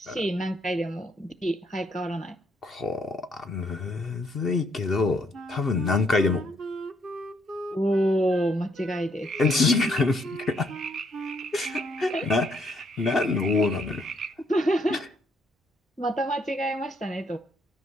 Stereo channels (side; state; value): both; normal; correlation 0.71